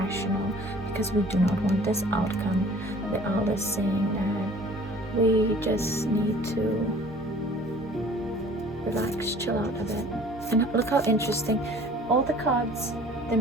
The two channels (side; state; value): both; normal; correlation 0.50